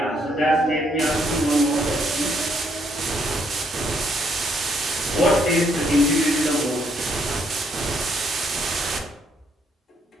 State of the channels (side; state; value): both; normal; correlation 0.71